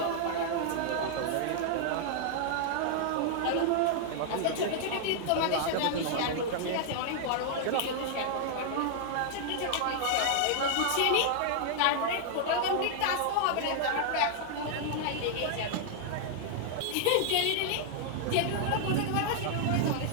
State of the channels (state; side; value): different; both; correlation -0.01